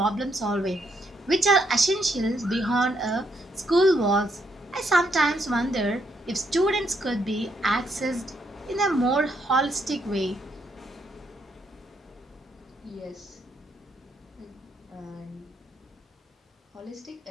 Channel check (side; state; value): both; normal; correlation 0.75